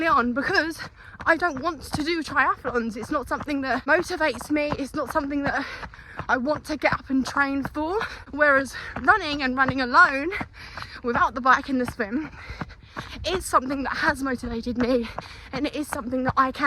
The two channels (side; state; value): both; identical; correlation 1.00